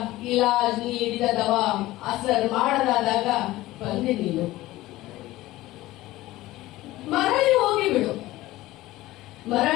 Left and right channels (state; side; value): quieter; right; 17.2 dB